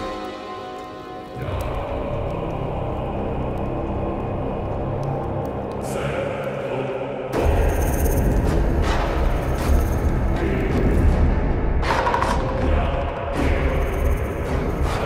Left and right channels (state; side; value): identical; both; correlation 1.00